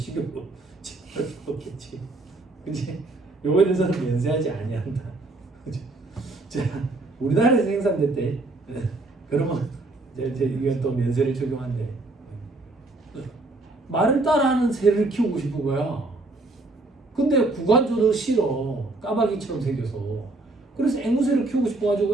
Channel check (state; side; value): quieter; left; 3.0 dB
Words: 제공할 수 없겠지. 그치? 요거에 대해서는 면세하지 아니한다. 그치? 자, 우리나라에서 생산됐대. 그러면 이제 이건 또 면세를 적용한대. 말을 따라하는 새를 키우고 싶은 거야. 근데 구간조도 싫어. 까마귀처럼 생겨서. 그래서 앵무새를 키우고